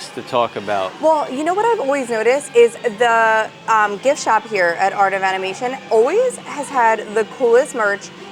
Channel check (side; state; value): both; identical; correlation 1.00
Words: to talk about. Well, you know what I've always noticed is the gift shop here at Art of Animation always has had the coolest merch